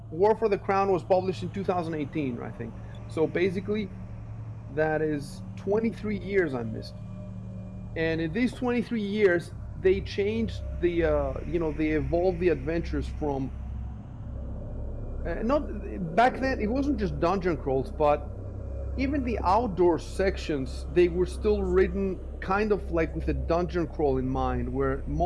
War for the Crown was published in 2018, I think. So basically, that is 23 years I missed. And in these 23 years, they changed they evolved the adventures from, not back then, it wasn't just dungeon crawls, but even the outdoor sections, they were still written kind of like with a dungeon crawl in mind, where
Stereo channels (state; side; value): identical; both; correlation 1.00